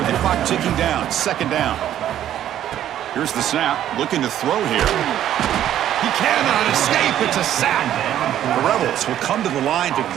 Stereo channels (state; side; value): quieter; left; 11.4 dB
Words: the clock ticking down. Second down. Here's the snap. Looking to throw here. He cannot escape. It's a sack. The Rebels will come to the line to